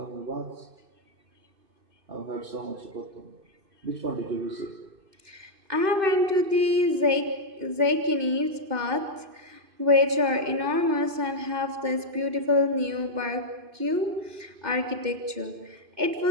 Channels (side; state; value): left; late; 2.6 ms